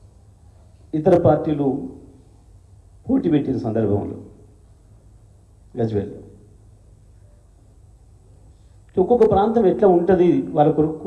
ఇతర పార్టీలు పోటీ పెట్టిన సందర్భంలో గజ్వేల్లో. ఒక్కొక్క ప్రాంతం ఎట్లా ఉంటుంది, వాళ్ళ కొరకు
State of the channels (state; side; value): identical; both; correlation 1.00